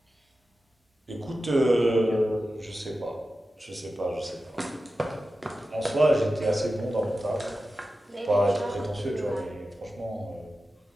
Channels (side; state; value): both; normal; correlation 0.93